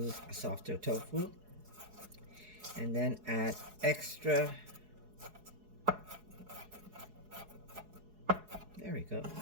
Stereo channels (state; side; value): late; left; 4.7 ms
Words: a softer tofu. And then add extra. There we go.